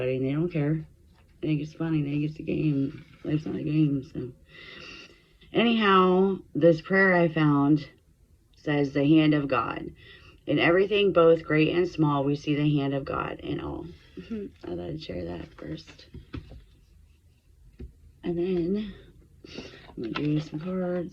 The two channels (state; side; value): identical; both; correlation 1.00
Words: and they don't care. They think it's funny. They think it's a game. Life's not a game. So, anyhow, this prayer I found says the hand of God. In everything, both great and small, we see the hand of God in all. I thought I'd share that first. And then I'm going to do some